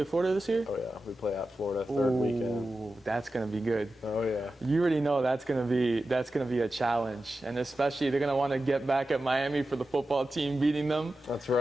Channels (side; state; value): both; normal; correlation 0.93